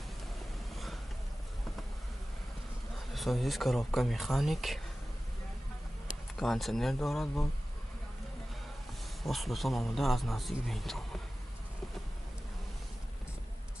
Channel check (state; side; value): normal; both; correlation 0.96